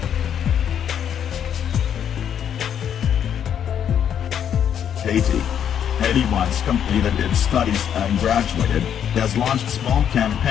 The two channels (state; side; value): quieter; right; 9.0 dB